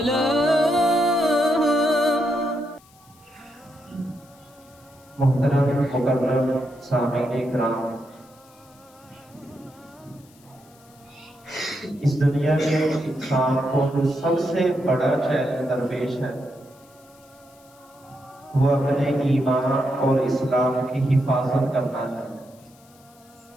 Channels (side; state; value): left; noise; hiss, 29 dB below the sound